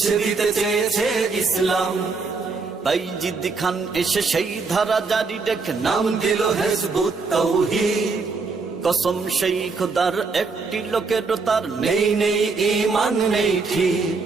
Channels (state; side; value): quieter; left; 4.4 dB